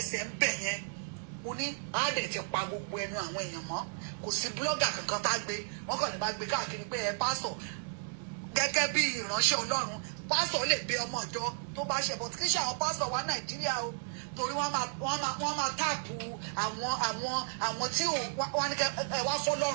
ń bẹ̀ yẹn mo ní àádẹ́ ti pa gbogbo ẹnu àwọn èèyàn mọ́ kò sí blogger kankan tá gbé wọ́n kàn ní bá gbé káàkiri pé ẹ pásọ̀ gẹ́gẹ́ bí ìránṣẹ́ Ọlọ́run pásọ̀ lè bẹ ọmọ ìjọ tó bá ṣe bọ̀ kí ṣe àwọn pásọ̀ wá Nàìjíríà o torí wọ́n máa táàpù àwọn tí wọ́n ní kẹ́ ẹ wá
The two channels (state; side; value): silent; left; digital silence